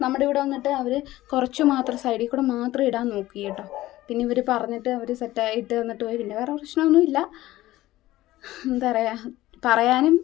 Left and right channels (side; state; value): right; quieter; 16.4 dB